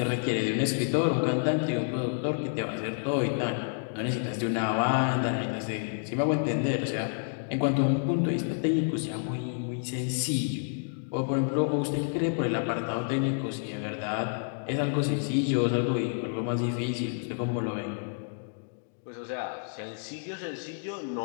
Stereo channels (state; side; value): silent; right; digital silence